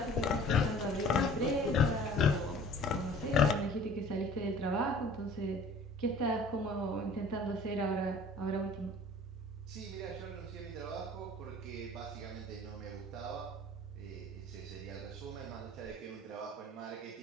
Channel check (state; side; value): normal; both; correlation 0.48